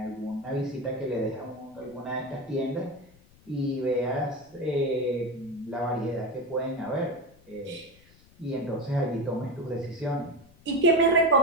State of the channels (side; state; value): left; noise; rumble, 27 dB below the sound